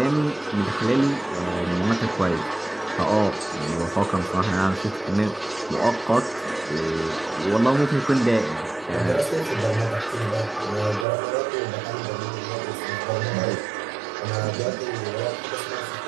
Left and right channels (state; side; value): drops out; left; at 11.1 s